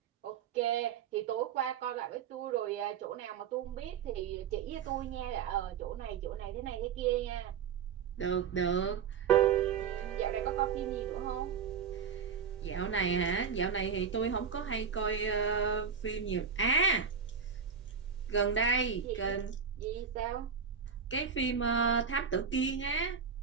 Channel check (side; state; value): left; quieter; 6.7 dB